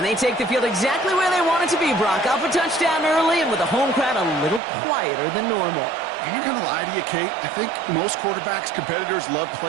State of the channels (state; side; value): drops out; left; at 4.6 s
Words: they take the field exactly where they want it to be, Brock. Off a touchdown early, and with the home crowd a little quieter than normal. I'm not going to lie to you, Kate. I think most quarterbacks, competitors love